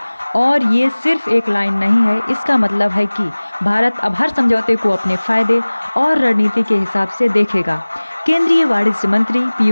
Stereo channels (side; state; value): both; inverted; correlation -1.00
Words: और ये सिर्फ एक लाइन नहीं है, इसका मतलब है कि भारत अब हर समझौते को अपने फायदे और रणनीति के हिसाब से देखेगा। केंद्रीय वाणिज्य मंत्री